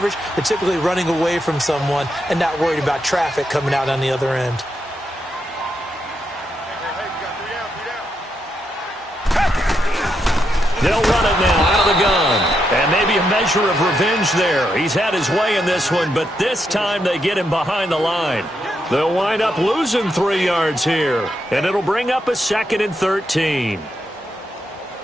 they're typically running away from someone and not worried about traffic coming out on the other end. They'll run it now out of the gun. And maybe a measure of revenge there. He's had his way in this one, but this time they get him behind the line. They'll wind up losing 3 yards here. And it'll bring up a 2nd and 13.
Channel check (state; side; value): normal; both; correlation 0.82